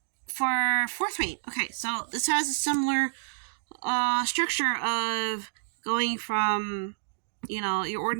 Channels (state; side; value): silent; left; digital silence